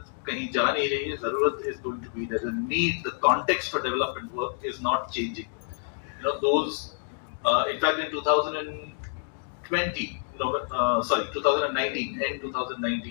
कहीं जा नहीं रही है. जरूरत is going to be there. The need, the context for development work is not changing. Those, in fact, in 2019, end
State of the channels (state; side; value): silent; right; digital silence